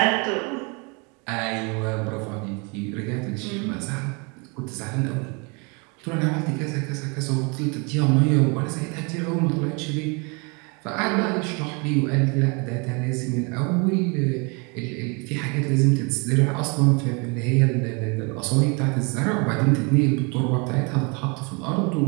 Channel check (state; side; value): quieter; left; 31.5 dB